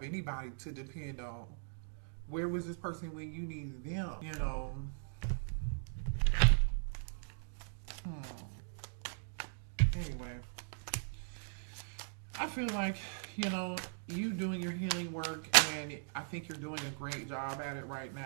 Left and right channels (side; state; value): left; silent; digital silence